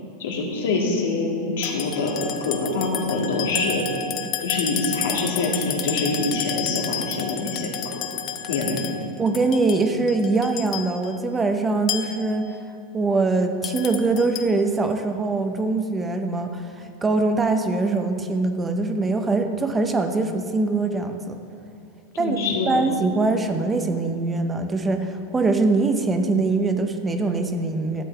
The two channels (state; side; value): normal; both; correlation 0.46